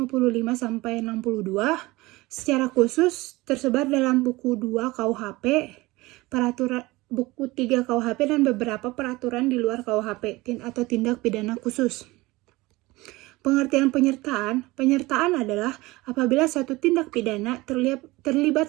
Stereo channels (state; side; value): quieter; left; 20.9 dB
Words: sampai 62. Secara khusus tersebar dalam buku 2 KUHP, peraturan buku 3 KUHP, dan beberapa peraturan di luar KUHP atau tindak pidana khusus. Pengertian penyertaan adalah apabila suatu tindak pidana